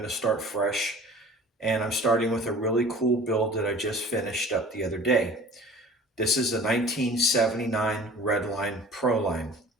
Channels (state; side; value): normal; both; correlation 0.45